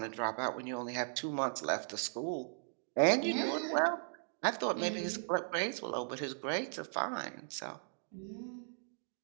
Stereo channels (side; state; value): left; silent; digital silence